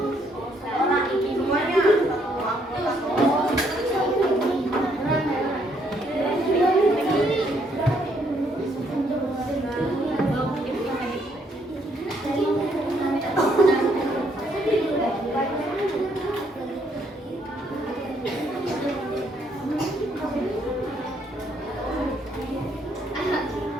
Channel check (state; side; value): normal; both; correlation 0.70